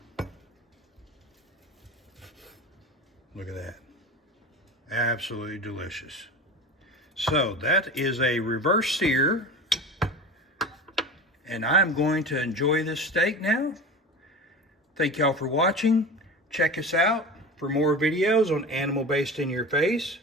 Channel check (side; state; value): both; normal; correlation 0.32